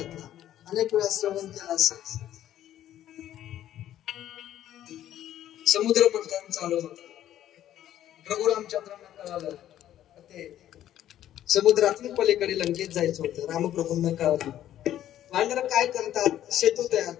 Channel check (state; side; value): quieter; right; 12.0 dB